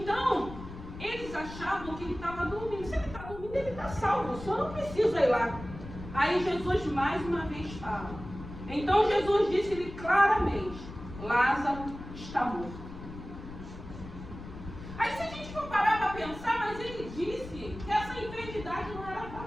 eles achavam que ele estava dormindo. Se ele está dormindo, ele está salvo. O senhor não precisa ir lá. Aí Jesus mais uma vez fala. Então Jesus disse-lhe claramente, Lázaro está morto. Aí se a gente for parar para pensar, mas ele disse que essa enfermidade não era para a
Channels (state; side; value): noise; left; rumble, 12 dB below the sound